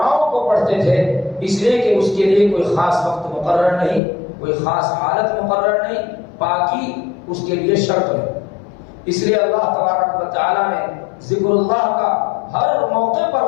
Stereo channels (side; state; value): right; drops out; at 4.0 s